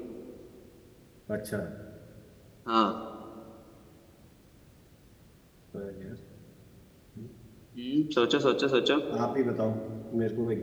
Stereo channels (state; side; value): identical; both; correlation 1.00